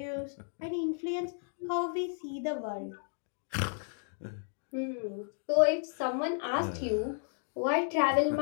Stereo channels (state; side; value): silent; right; 56 dB below the other